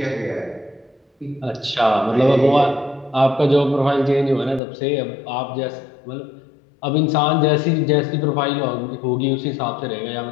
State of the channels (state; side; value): drops out; right; at 4.6 s